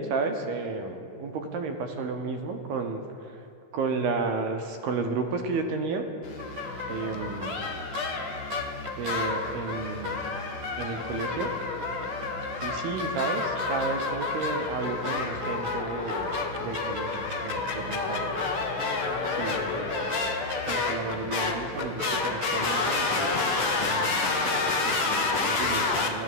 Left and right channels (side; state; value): left; late; 13 ms